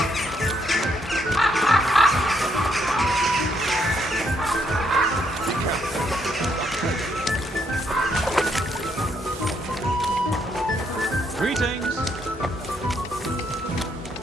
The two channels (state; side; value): normal; both; correlation 0.74